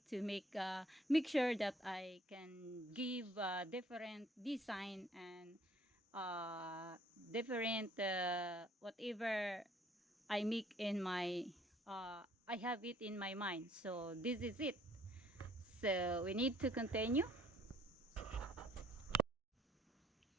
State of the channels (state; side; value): normal; both; correlation 0.60